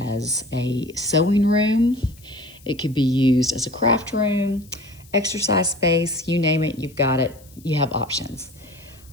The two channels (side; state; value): left; noise; hiss, 26 dB below the sound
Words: a sewing room. It could be used as a craft room, exercise space, you name it, you've got it. You have options.